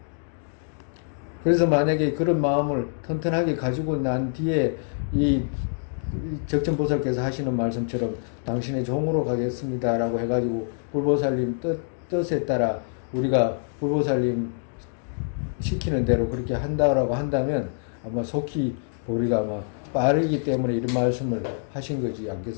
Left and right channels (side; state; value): right; silent; digital silence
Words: 그래서 만약에 그런 마음을 튼튼하게 가지고 난 뒤에 이 적천보살께서 하시는 말씀처럼 당신의 종으로 가겠습니다라고 해가지고 불보살님 뜻에 따라 우리가 불보살님 시키는 대로 그렇게 한다라고 한다면 아마 속히 우리가 아마 빠르기 때문에 이런 말씀을 하신 거지